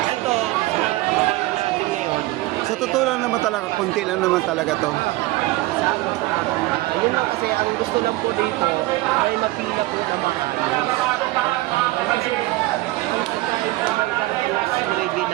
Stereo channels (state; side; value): quieter; left; 19.3 dB